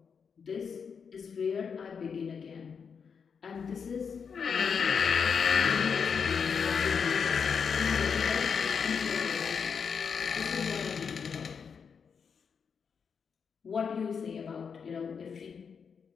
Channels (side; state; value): right; quieter; 6.3 dB